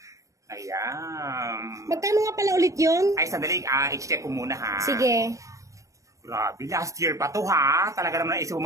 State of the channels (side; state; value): left; late; 0.16 ms